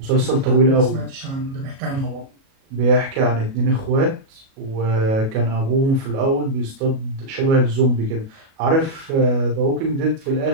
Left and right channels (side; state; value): left; late; 37 ms